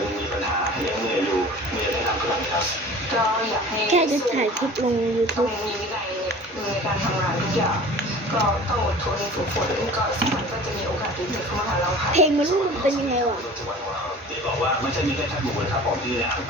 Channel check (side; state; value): both; normal; correlation 0.42